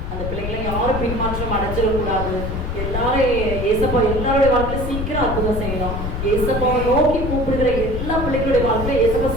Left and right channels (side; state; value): left; noise; rumble, 4 dB below the sound